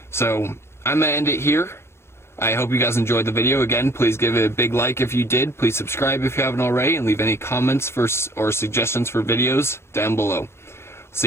So I'm gonna end it here. I hope you guys enjoyed the video. Again, please give it a big like if you did. Please subscribe if you haven't already, and leave any comments or suggestions for videos down below.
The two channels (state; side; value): late; right; 0.12 ms